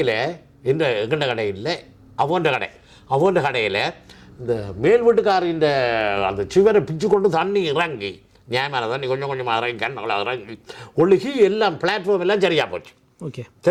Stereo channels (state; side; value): identical; both; correlation 1.00